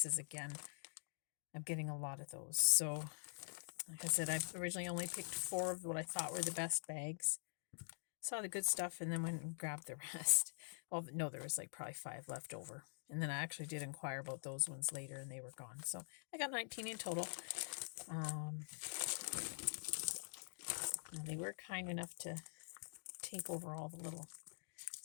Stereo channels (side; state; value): right; silent; digital silence